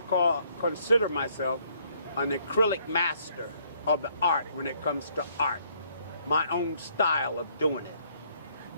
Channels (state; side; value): inverted; both; correlation -0.66